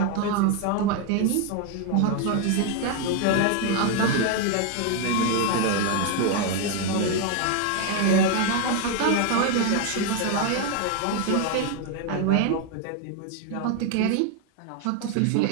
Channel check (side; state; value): both; different; correlation 0.01